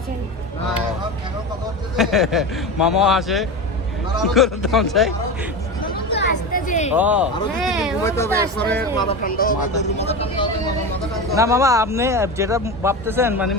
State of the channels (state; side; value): normal; both; correlation 0.24